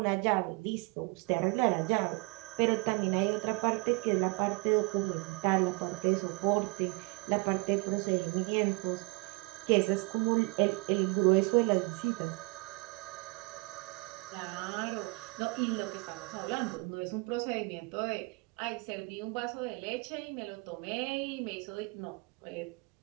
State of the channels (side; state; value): left; quieter; 27.4 dB